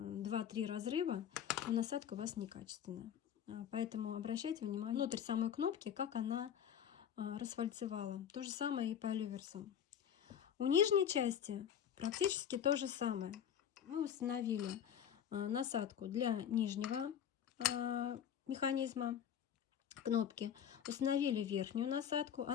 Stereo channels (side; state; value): right; quieter; 9.1 dB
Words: разрыва, то насадка у вас некачественная. Поэтому обращайте внимание внутрь самой кнопки, как она расфальцевала. То же самое и по люверсам. У нижней части практически то же самое. Мы установили насадку для нижнего механизма кнопки, установили верхнюю насадку.